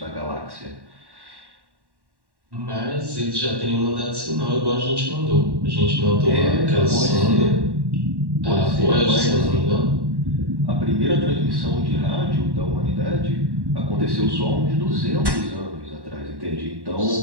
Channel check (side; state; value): left; late; 1.1 ms